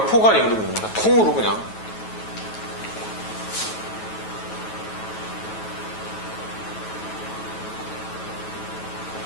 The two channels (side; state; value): right; late; 9.2 ms